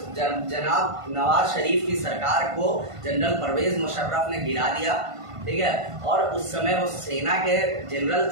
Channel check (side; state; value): left; late; 1.5 ms